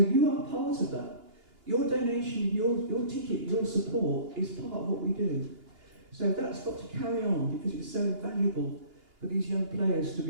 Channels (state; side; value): late; left; 2.8 ms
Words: are part of that. Your donation, your ticket, your support is part of what we do. So that's got to carry on because it's so invaluable for these young players to